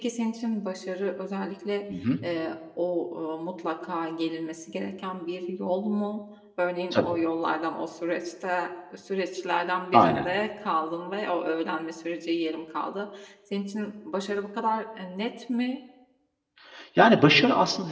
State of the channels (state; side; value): identical; both; correlation 1.00